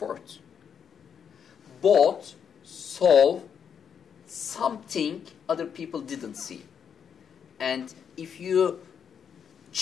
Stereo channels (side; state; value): right; quieter; 7.5 dB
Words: Both saw something other people didn't see. And if you